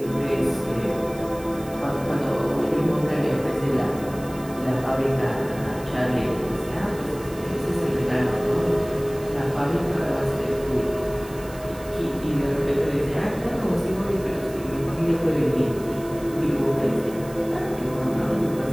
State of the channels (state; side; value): noise; right; hiss, 19 dB below the sound